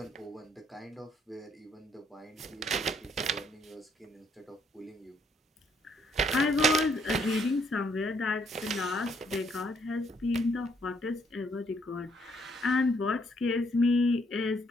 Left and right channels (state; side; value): normal; both; correlation 0.69